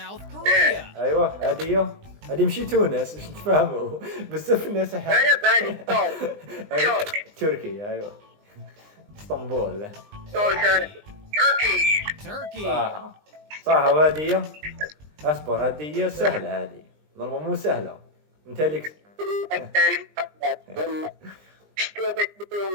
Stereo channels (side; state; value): left; late; 20 ms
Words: كوريا. ايوه هذه مشي تونس باش نتفاهموا بزاف الناس انا بالي ترك. تركي ايوه اسطنبول. تركي. تركي. صح وهذه اصبر هذه سهلة. هذه نورمال مو سهلة انت لك.